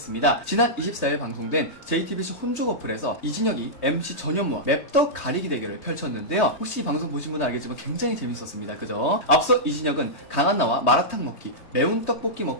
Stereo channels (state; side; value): late; right; 4.5 ms